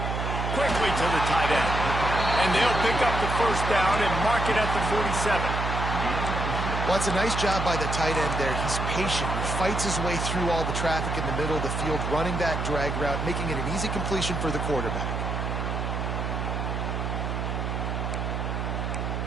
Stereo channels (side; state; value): right; noise; hum, 2 dB below the sound